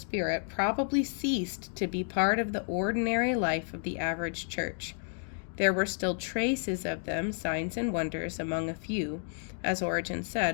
probably ceased to be part of the ordinary life of the average church. There were still traces of them, signs and wonders, among a few, as Origen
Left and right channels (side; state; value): right; silent; 57 dB below the other